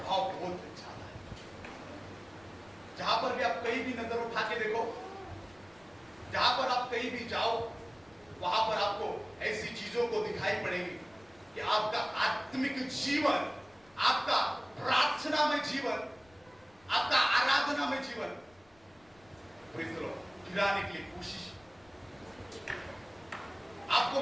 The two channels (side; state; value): left; noise; rumble, 29 dB below the sound